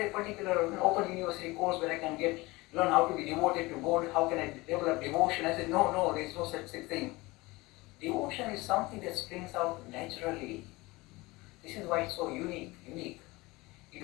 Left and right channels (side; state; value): right; quieter; 22.1 dB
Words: a particular open university course where I can learn how to be devoted to God? How can I develop devotion? I said, no, there is no such thing. Devotion is something that springs out naturally. This is why it's so unique. You